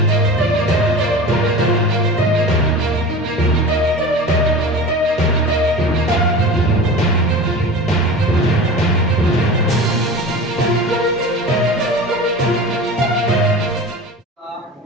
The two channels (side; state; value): both; normal; correlation 0.34